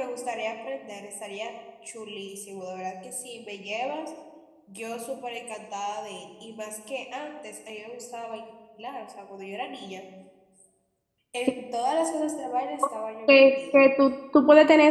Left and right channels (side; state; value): both; identical; correlation 1.00